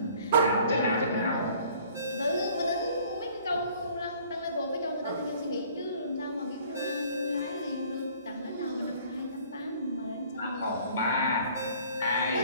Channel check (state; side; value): inverted; both; correlation -0.54